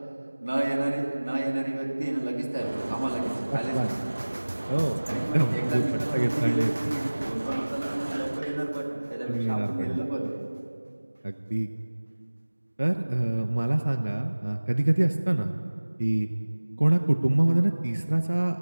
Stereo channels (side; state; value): both; inverted; correlation -1.00